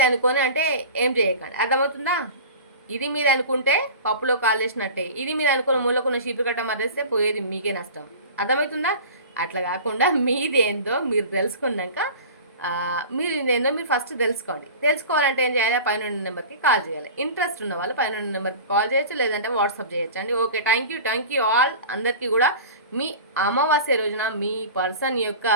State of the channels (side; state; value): both; inverted; correlation -0.36